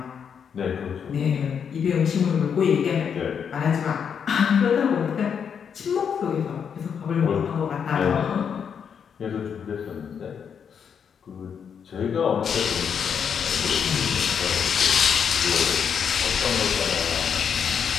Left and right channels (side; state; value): right; quieter; 7.3 dB